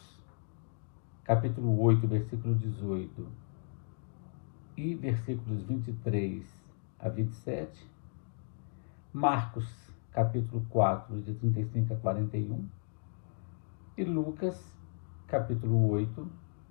capítulo 8, versículo 18 e versículos 23 a 27, Marcos, capítulo 4, de 35 a 41, e Lucas, capítulo 8,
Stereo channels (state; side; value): silent; right; 55 dB below the other